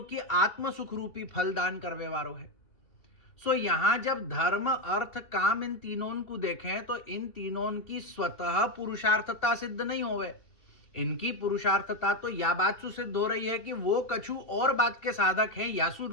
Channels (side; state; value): right; late; 3.0 ms